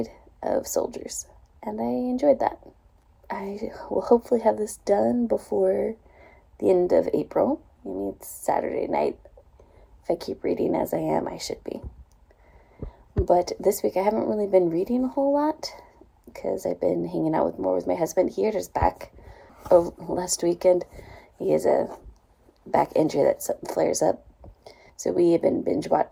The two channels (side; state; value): both; identical; correlation 1.00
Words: of soldiers. And I enjoyed that. I will hopefully have this done before the end of April. I mean, it's Saturday night. If I keep reading as I am, I should be. But this week I haven't really been reading a whole lot because I've been hanging out more with my husband. He hurt his back last weekend. He has a back injury that flares up. So we have been binge